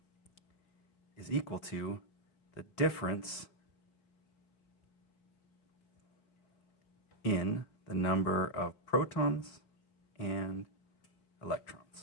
is equal to the difference in the number of protons and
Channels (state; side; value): late; right; 4.2 ms